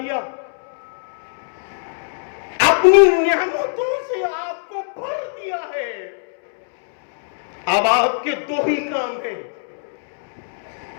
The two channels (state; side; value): silent; right; 65 dB below the other